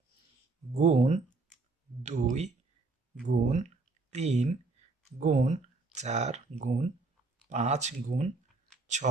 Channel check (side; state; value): left; quieter; 3.5 dB